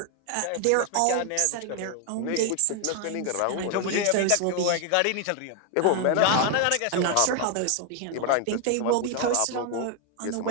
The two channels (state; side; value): different; both; correlation 0.01